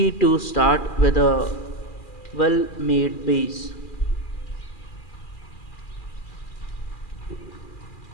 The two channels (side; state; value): right; late; 2.4 ms